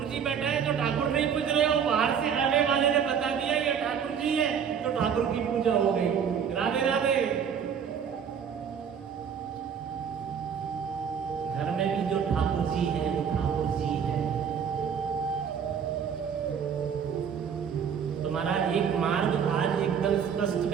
जी बैठा है तो ठाकुर नहीं पूज रहे हो, बाहर से आने वाले ने बता दिया ये ठाकुर जी है, तो ठाकुर की पूजा हो गई। राधे राधे। घर में भी जो ठाकुर जी है वो ठाकुर जी है। तुम्हारा एक मार्ग आज एकदम स्पष्ट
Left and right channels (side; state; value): left; quieter; 7.4 dB